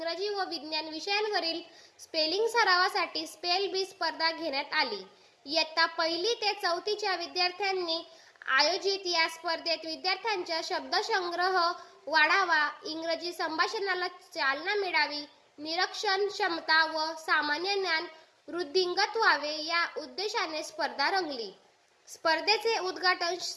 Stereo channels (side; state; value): both; identical; correlation 1.00